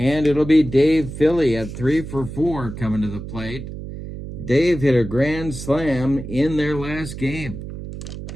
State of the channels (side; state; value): right; noise; hum, 9 dB below the sound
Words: it'll be Dave Philly at 3 for 4 coming to the plate. Dave hit a grand slam in their last game.